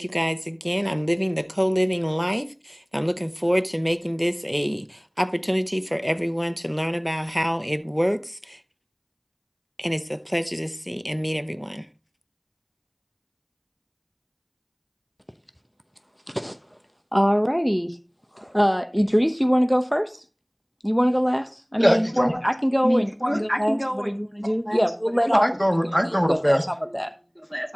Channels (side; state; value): both; identical; correlation 1.00